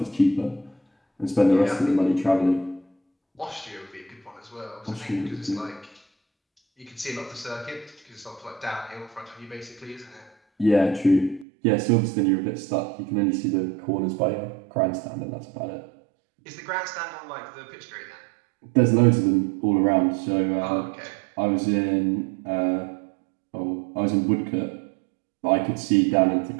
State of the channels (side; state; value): left; drops out; at 11.5 s